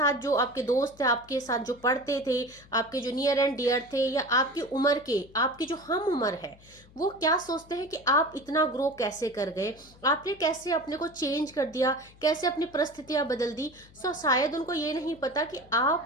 जो आपके दोस्त थे, आपके साथ जो पढ़ते थे, आपके जो नियर एंड डियर थे, या आपकी उम्र के, आपकी जो हम उम्र है, वो क्या सोचते हैं कि आप इतना ग्रो कैसे कर गए, आपने कैसे अपने को चेंज कर दिया, कैसे अपनी परिस्थितियां बदल दी। सो शायद उनको ये नहीं पता कि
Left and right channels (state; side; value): noise; left; hum, 25 dB below the sound